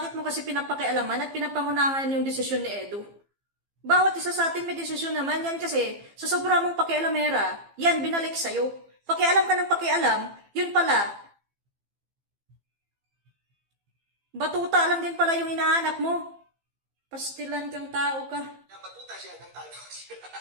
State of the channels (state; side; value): late; left; 15 ms